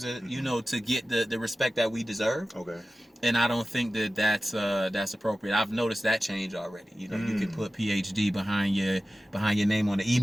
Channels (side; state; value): both; normal; correlation 0.95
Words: to get the respect that we deserve. Okay. And I don't think that's appropriate. I've noticed that change already. You can put PhD behind your name on the